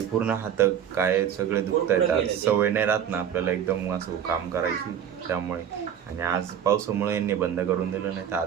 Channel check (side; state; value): left; quieter; 9.1 dB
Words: पूर्ण हात काय सगळे दुखत आहेत. आज सवय नाही राहत ना आपल्याला एकदम असं काम करायची, त्यामुळे. आणि आज पावसामुळे यांनी बंद करून दिलं, नाही तर